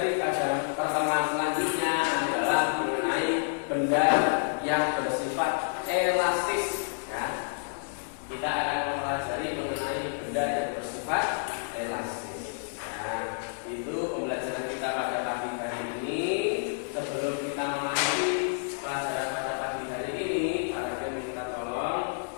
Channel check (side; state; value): right; silent; digital silence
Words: pada pertemuan selanjutnya. yang bersifat elastis. Ya. Kita akan mempelajari mengenai benda yang bersifat elastis. Nah, itu pembelajaran kita pada pagi hari ini. Sebelum kita mengakhiri pelajaran pada pagi hari ini, para guru minta tolong